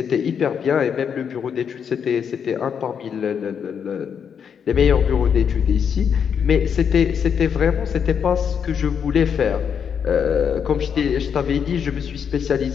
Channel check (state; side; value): quieter; right; 7.4 dB